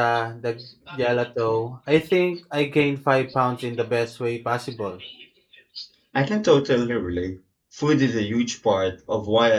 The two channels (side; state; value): both; identical; correlation 1.00